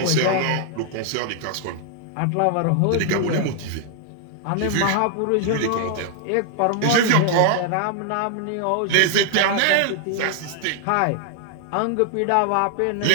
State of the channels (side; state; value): both; different; correlation 0.00